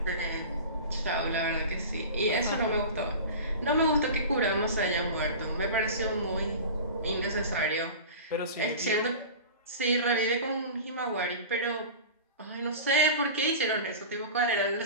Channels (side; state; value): both; inverted; correlation -0.34